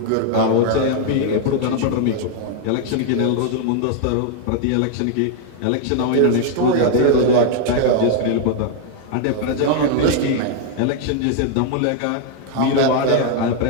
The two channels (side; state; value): both; different; correlation 0.00